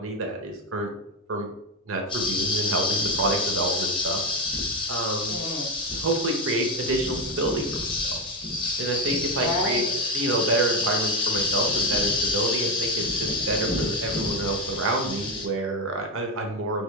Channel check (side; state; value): both; normal; correlation 0.11